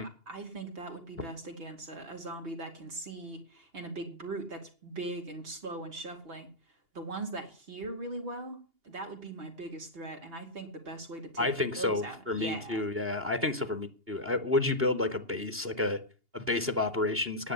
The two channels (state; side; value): late; left; 2.8 ms